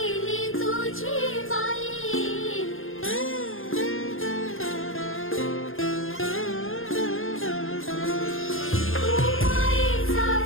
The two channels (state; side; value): late; right; 0.60 ms